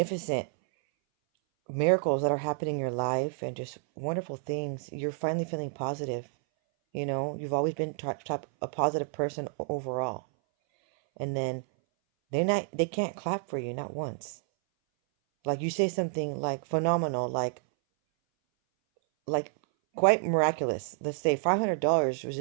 miracles that are happening in your life and just wonderful things. You're finally feeling positive. You've always been a positive person overall. And then they can't clap for you, not once. Like you say something like phenomenal, like quite miraculous. Let's say $500 was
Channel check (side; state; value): left; silent; 58 dB below the other